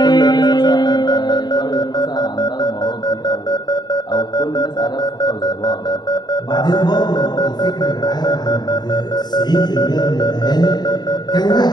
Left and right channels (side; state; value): right; late; 0.20 ms